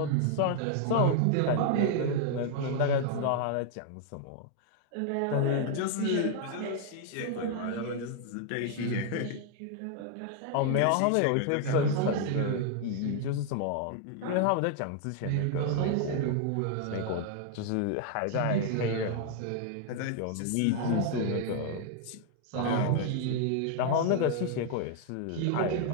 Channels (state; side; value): different; both; correlation 0.00